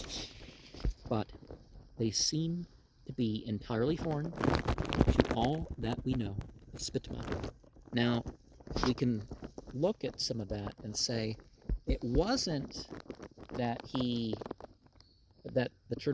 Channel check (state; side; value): identical; both; correlation 1.00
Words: but they seem to be entirely foreign to all that we know of Spitama. Now, we can look at some of that and say it wasn't that the